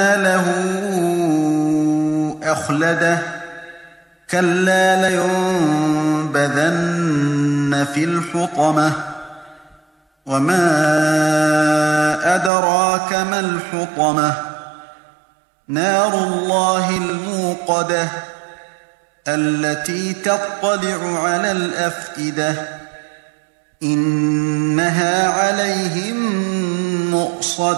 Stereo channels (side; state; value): left; drops out; at 12.5 s